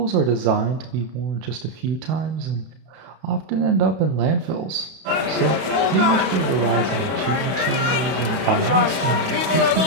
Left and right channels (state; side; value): late; left; 31 ms